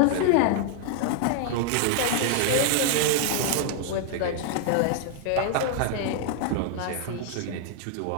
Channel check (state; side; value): different; both; correlation 0.00